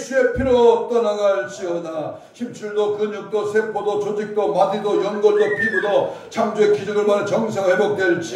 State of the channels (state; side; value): identical; both; correlation 1.00